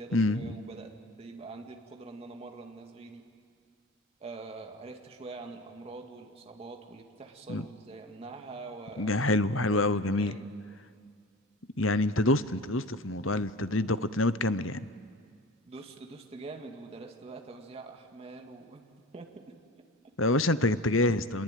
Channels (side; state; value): both; normal; correlation 0.36